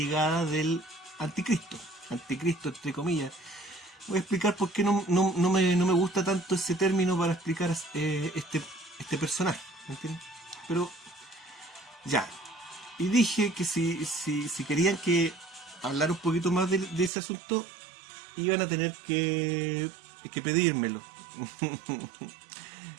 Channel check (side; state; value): left; drops out; at 17.1 s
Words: del anticristo. Anticristo, entre comillas. Voy a explicar por qué no me gusta tanto ese término para explicar este personaje, ¿me entiendes? Pero ya, y dije que si querían que hablar un poquito más de ese asunto, iban a tener que pedírmelo.